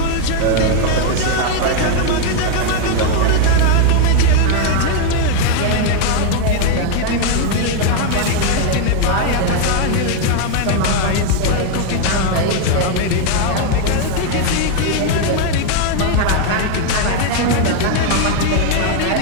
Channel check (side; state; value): both; different; correlation 0.01